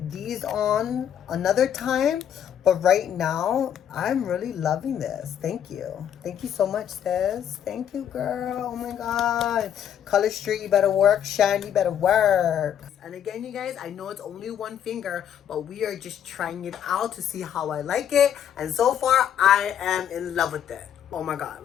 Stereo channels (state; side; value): quieter; right; 9.4 dB